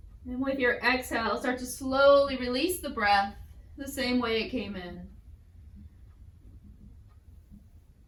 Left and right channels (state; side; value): identical; both; correlation 1.00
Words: And with your exhale, start to slowly release the breath the same way it came in.